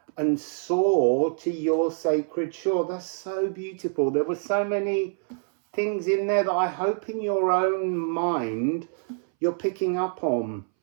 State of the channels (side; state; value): left; silent; 61 dB below the other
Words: and soar to your sacred shore. That's so beautiful. There were so many things in there that I hope in your own mind you're picking up on.